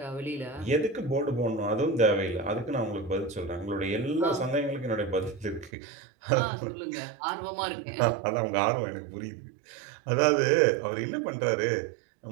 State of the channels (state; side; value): drops out; left; at 5.7 s